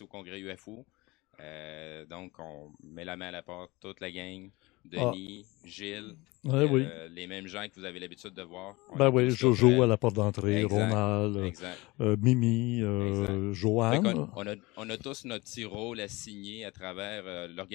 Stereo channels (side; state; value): right; quieter; 22.8 dB